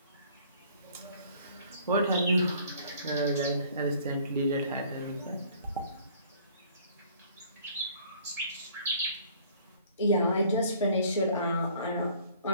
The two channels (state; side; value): inverted; both; correlation -0.56